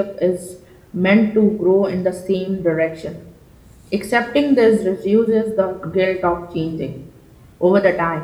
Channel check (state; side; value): identical; both; correlation 1.00